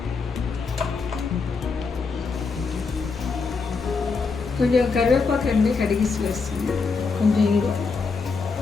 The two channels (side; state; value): right; quieter; 4.7 dB